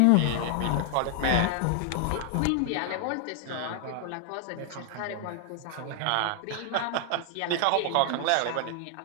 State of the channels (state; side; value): different; both; correlation 0.00